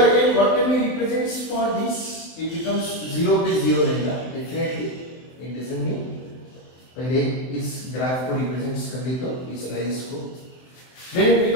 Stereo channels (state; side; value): late; right; 23 ms